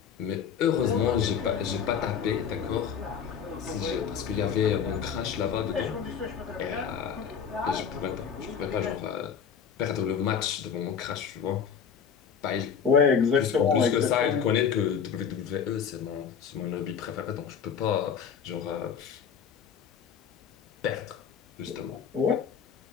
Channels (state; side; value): quieter; right; 7.3 dB